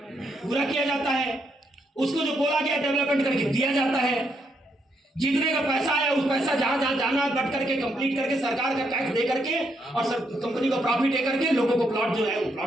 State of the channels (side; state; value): both; normal; correlation 0.77